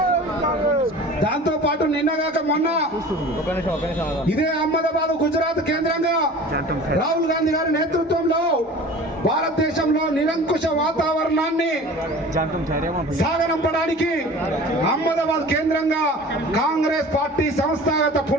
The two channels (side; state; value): both; normal; correlation 0.41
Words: దాంతో పాటు నిన్నగాక మొన్న ఇదే అహ్మదాబాద్, గుజరాత్ కేంద్రంగా రాహుల్ గాంధీ గారి నేతృత్వంలో భారతదేశంలో నిరంకుశ వాతావరణాన్ని సాగనంపడానికి అహ్మదాబాద్ కేంద్రంగా కాంగ్రెస్ పార్టీ సంస్థాగత